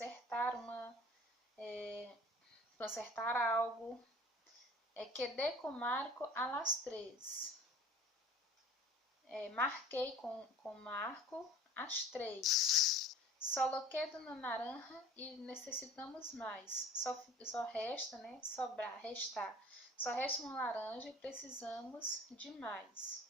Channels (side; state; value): both; normal; correlation 0.46